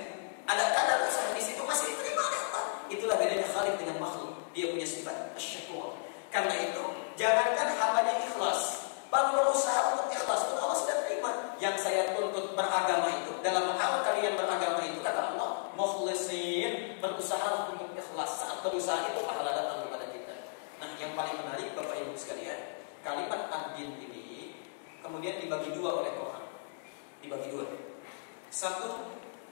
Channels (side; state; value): right; silent; digital silence